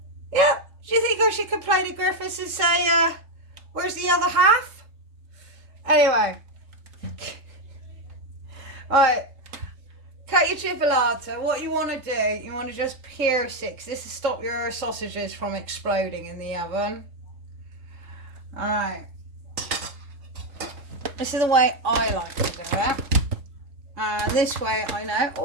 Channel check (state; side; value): late; left; 3.7 ms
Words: Yeah. Do you think I should complain to Griffiths and say, where's the other half? Anyway. Right. Cut your chipolata. What you want to do, you want to just pierce it, because this will stop your sausages from exploding in the oven. Alright. This is the way I like to do it. And this way I know...